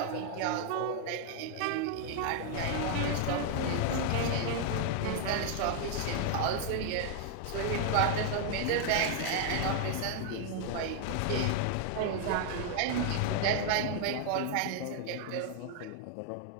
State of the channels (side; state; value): both; different; correlation 0.00